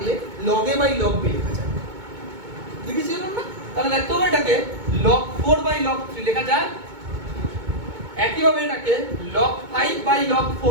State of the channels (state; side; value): late; left; 2.2 ms